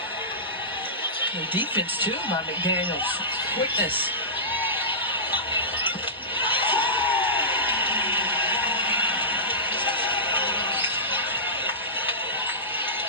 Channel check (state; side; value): normal; both; correlation -0.17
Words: The defense, too, by McDaniels. Quickness.